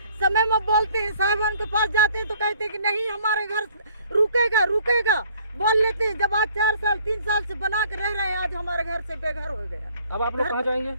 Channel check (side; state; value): both; inverted; correlation -0.58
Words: समय में बोलते हैं साहब के पास जाते हैं तो कहते हैं कि नहीं हमारे घर रुकेगा बोल लेते हैं। जब आज 4 साल 3 साल से बना के रह रहे हैं, आज हमारे घर से बेघर हो गया। अब आप लोग कहाँ जाएंगे?